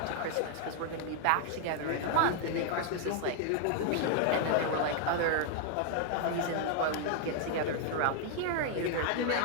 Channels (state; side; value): different; both; correlation 0.00